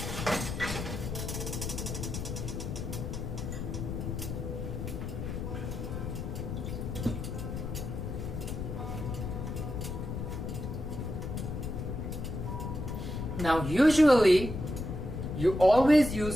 Now, usually, you always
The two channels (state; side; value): noise; left; rumble, 4 dB below the sound